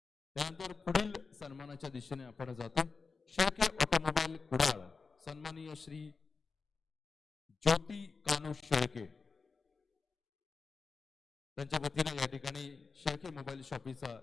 त्यानंतर पुढील सन्मानाच्या दिशेने आपण जातो. शेळके ऑटोमोबाईल कुडाळ सन्माननीय श्री ज्योती कानू शेळके. त्यांच्या वतीने या ठिकाणी शेळके मोबाईल शॉपीचा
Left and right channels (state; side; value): quieter; right; 4.7 dB